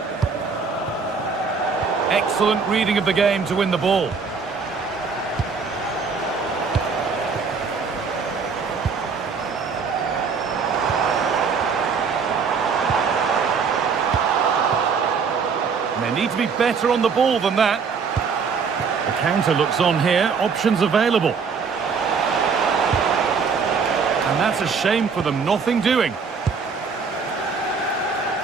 Excellent reading of the game to win the ball. They need to be better on the ball than that. The counter looks on here, options available. And that's a shame for them, nothing doing.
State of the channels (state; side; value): quieter; left; 5.5 dB